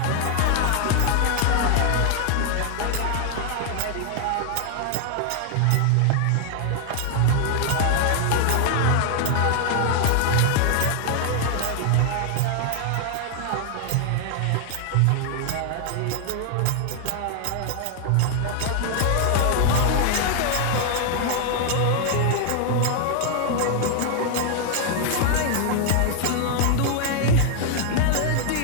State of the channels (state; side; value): different; both; correlation 0.00